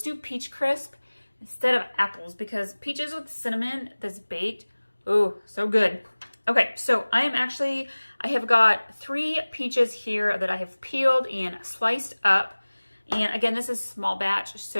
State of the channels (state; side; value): inverted; both; correlation -1.00